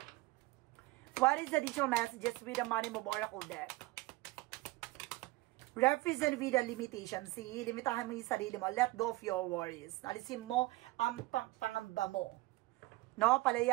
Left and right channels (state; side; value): quieter; left; 20.0 dB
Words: What is the additional messages with the Money Move Oracle deck? Represent with the limitation. See, limitahan mo yung sarili mo. Let go of your worries. Alisin mo ang pangamba mo. No,